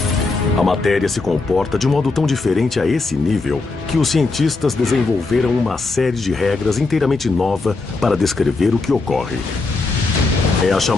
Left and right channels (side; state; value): right; quieter; 3.7 dB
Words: A matéria se comporta de um modo tão diferente a esse nível que os cientistas desenvolveram uma série de regras inteiramente nova para descrever o que ocorre. É a